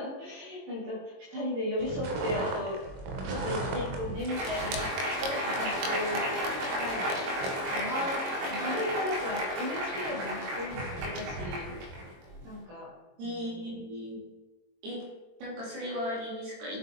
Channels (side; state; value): left; late; 22 ms